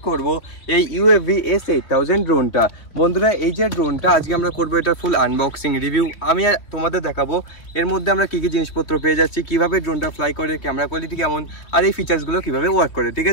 করব এই ইউএভি S8000 ড্রোনটা। বন্ধুরা, এই যে ড্রোনটা আজকে আমরা করবো, এটা ফুল আনবক্সিং রিভিউ আমি তোমাদের দেখাবো। এর মধ্যে আমরা কি কি জিনিসপত্র পেয়ে যাচ্ছি, কিভাবে ড্রোনটা ফ্লাই করে, ক্যামেরা কোয়ালিটি কেমন, আর এই ফিচার্সগুলো কিভাবে ওয়ার্ক করে। ঠিক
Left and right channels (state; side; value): late; right; 3.0 ms